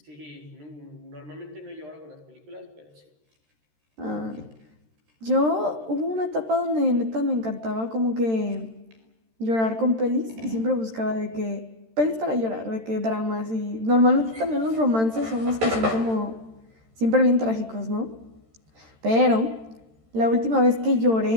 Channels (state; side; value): late; left; 13 ms